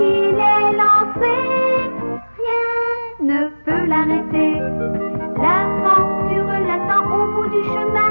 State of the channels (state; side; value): inverted; both; correlation -1.00